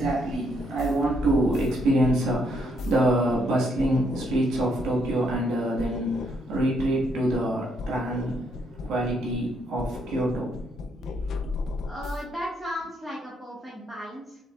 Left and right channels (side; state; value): both; normal; correlation 0.73